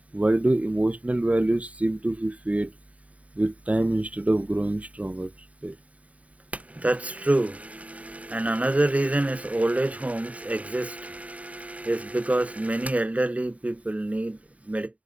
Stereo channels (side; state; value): left; late; 0.068 ms